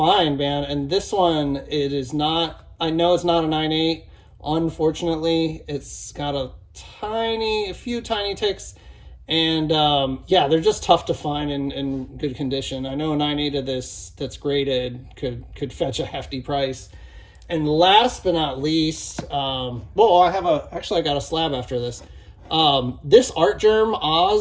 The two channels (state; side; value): identical; both; correlation 1.00